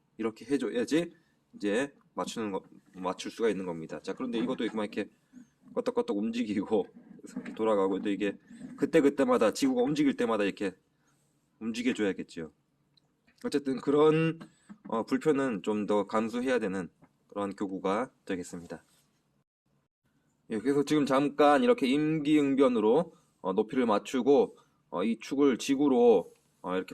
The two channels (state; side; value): identical; both; correlation 1.00